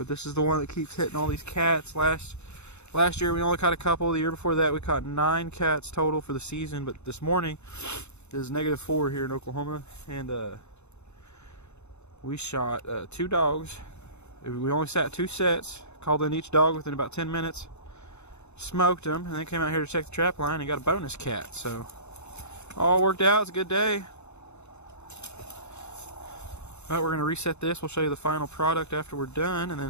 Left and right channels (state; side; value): late; right; 0.81 ms